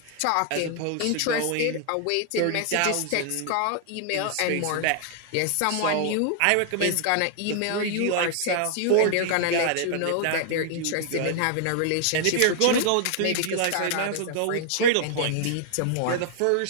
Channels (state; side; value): different; both; correlation 0.00